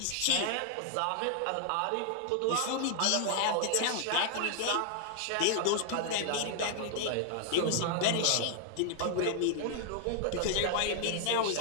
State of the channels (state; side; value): different; both; correlation 0.00